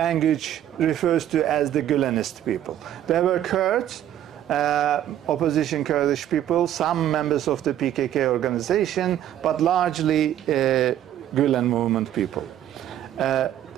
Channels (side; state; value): left; quieter; 11.4 dB